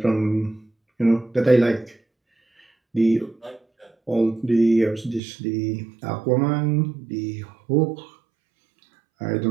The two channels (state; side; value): drops out; left; at 5.2 s